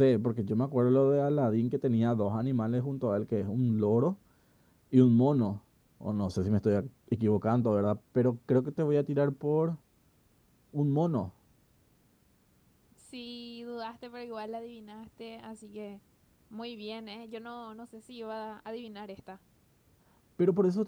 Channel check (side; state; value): both; identical; correlation 1.00